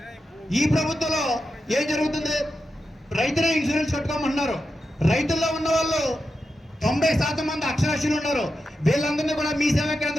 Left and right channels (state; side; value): normal; both; correlation 0.88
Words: ఈ ప్రభుత్వంలో ఏం జరుగుతుంది, రైతులే ఇన్సూరెన్స్ కట్టుకోమంటున్నారు. రైతుల్లో ఉన్న వాళ్ళు 90% మంది అక్షరాస్యులు ఉన్నారు. వీళ్ళందరినీ కూడా మీ సేవా